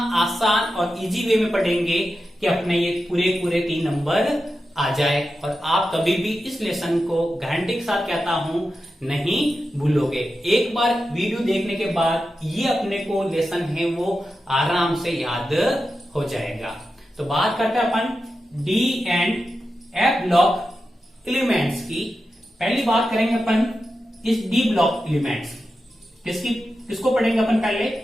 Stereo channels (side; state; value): both; normal; correlation 0.91